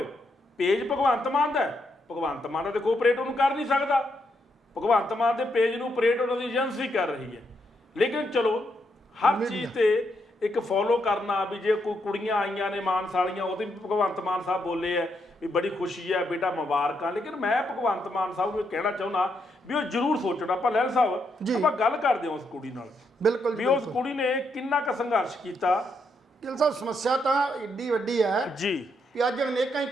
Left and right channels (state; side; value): normal; both; correlation 0.79